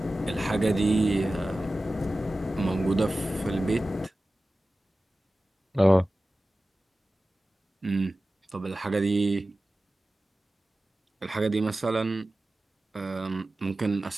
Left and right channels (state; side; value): normal; both; correlation 0.96